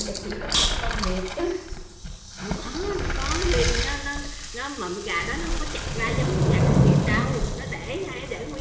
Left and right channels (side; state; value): both; identical; correlation 1.00